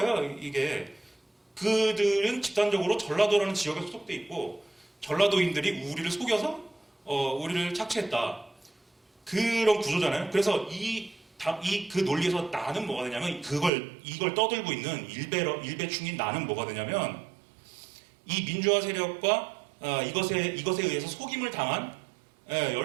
이게 그들은 집단적으로 전라도라는 지역에 소속돼 있고 전라도인들이 우리를 속여서 우리를 착취했다 그런 구조잖아요. 그래서 그 논리에서 나는 뭐가 되냐면 이걸 떠들고 있는 일배충인 나는 뭐가 되냐면 이 민주화 세력과 이것에 의해서 속임을 당한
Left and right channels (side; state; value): left; drops out; at 13.7 s